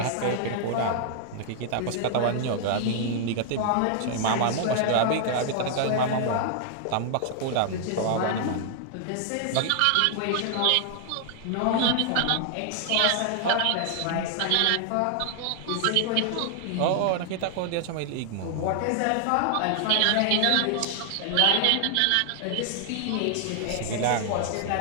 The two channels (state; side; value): different; both; correlation 0.00